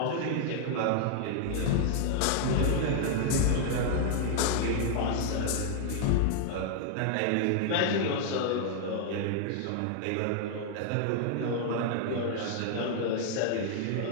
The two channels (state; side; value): different; both; correlation 0.00